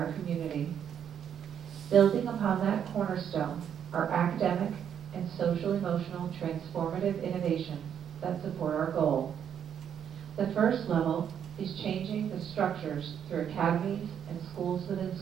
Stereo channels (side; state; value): left; quieter; 8.7 dB